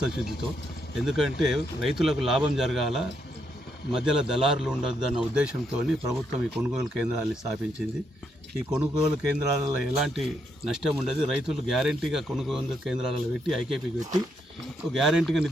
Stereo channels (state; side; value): normal; both; correlation 0.77